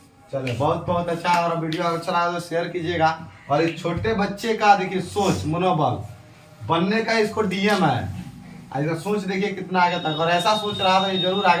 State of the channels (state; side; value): identical; both; correlation 1.00